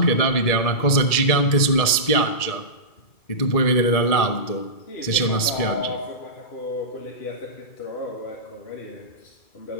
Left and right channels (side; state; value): right; late; 2.3 ms